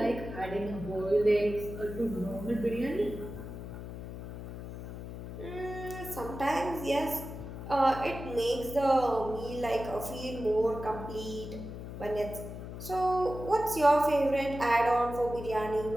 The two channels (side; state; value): left; noise; hum, 9 dB below the sound